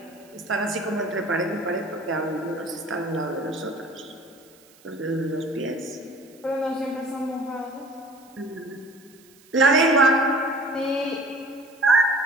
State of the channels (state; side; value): noise; right; hiss, 27 dB below the sound